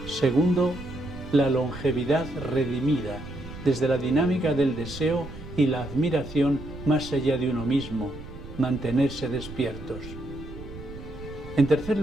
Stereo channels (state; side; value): noise; right; rumble, 13 dB below the sound